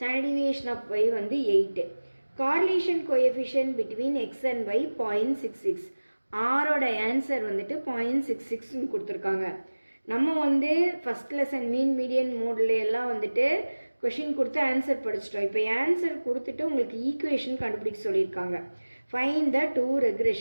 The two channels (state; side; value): inverted; both; correlation -1.00